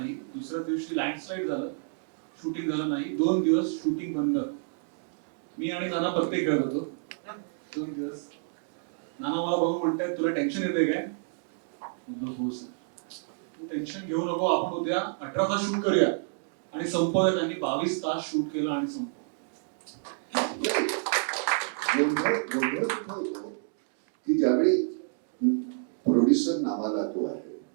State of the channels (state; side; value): silent; left; digital silence